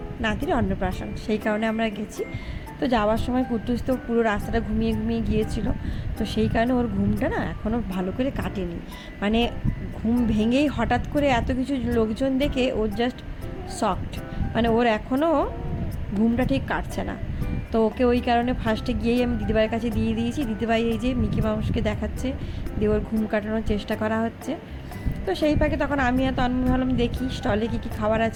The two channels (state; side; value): identical; both; correlation 1.00